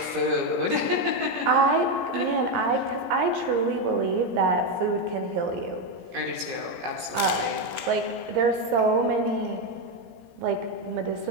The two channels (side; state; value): left; late; 17 ms